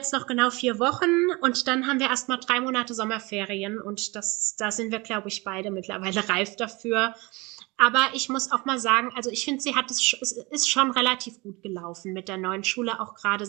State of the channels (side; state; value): left; quieter; 24.8 dB